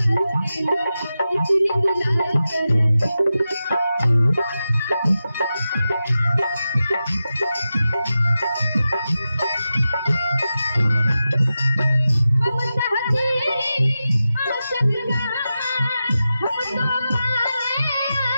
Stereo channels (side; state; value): both; inverted; correlation -0.92